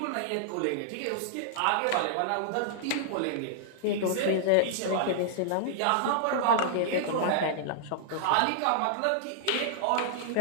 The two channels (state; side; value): different; both; correlation -0.01